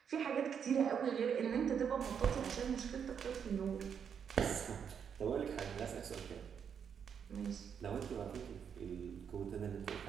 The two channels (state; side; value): quieter; left; 7.5 dB